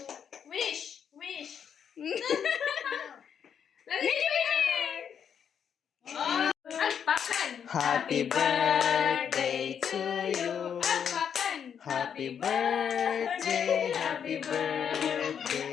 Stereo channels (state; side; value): quieter; right; 7.9 dB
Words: Wish. Wish. Oh, alpakan. Happy birthday to you. Alpakan. Happy birthday, happy